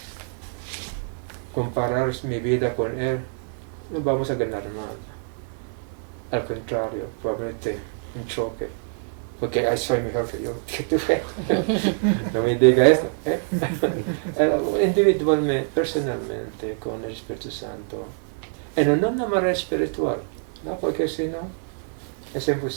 comparar mi vida con Él, no vamos a ganar nada. Al contrario, probablemente un choque. Porque soy mejor que tú. No me diga esto. Individualmente, personalmente, con el Espíritu Santo. En una manera espiritual, ¿no? Porque si no, es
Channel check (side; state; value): left; silent; 62 dB below the other